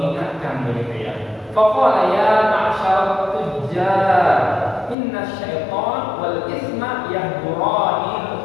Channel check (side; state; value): right; drops out; at 5.0 s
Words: begitu ya. Faqala ya ma'syar tujjar inna syaitan wal isma yahdurani